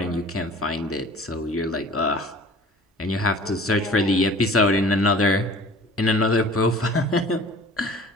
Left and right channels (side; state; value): both; normal; correlation 0.46